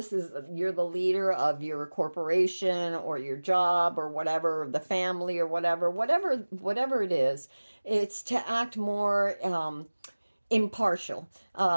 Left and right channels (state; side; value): inverted; both; correlation -1.00